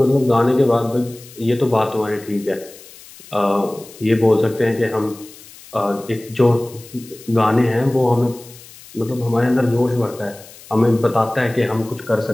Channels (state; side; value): noise; left; hiss, 20 dB below the sound